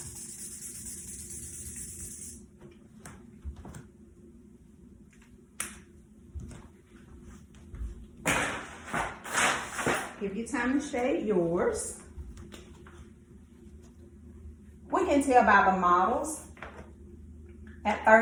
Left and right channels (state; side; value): identical; both; correlation 1.00